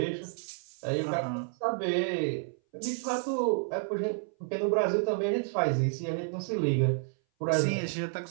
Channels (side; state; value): left; silent; 58 dB below the other